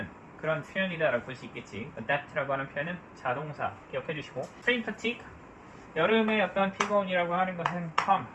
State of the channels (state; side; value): identical; both; correlation 1.00